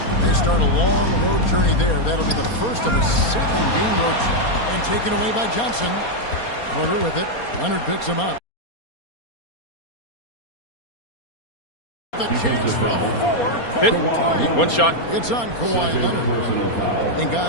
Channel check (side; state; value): right; late; 4.3 ms